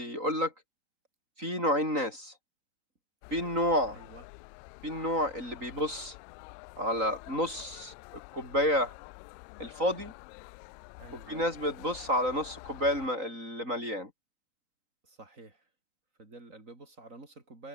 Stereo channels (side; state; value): left; late; 3.9 ms